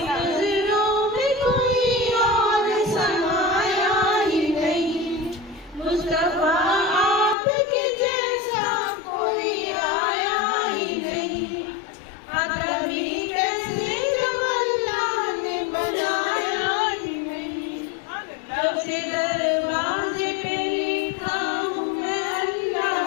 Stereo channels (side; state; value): right; drops out; at 7.4 s